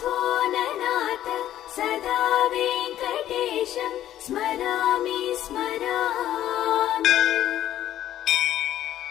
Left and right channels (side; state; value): right; quieter; 12.3 dB